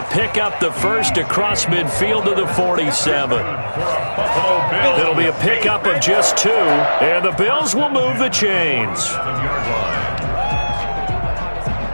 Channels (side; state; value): both; inverted; correlation -1.00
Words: pick up the first across midfield to the 47. It'll be a pickup of just 2. And the Bills will move the chains.